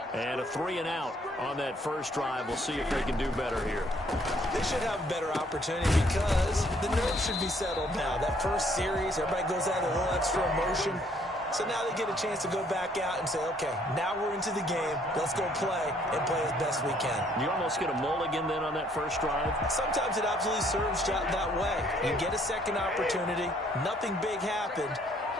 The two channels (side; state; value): both; normal; correlation 0.64